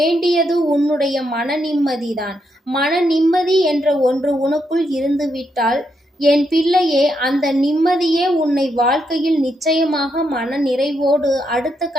உன்னுடைய மன நிம்மதிதான். மன நிம்மதி என்ற ஒன்று உனக்குள் இருந்துவிட்டால் என் பிள்ளையே, அந்த நிம்மதியே உன்னை வாழ்க்கையில் நிச்சயமாக மன நிறைவோடு அடுத்த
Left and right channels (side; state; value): both; normal; correlation 0.80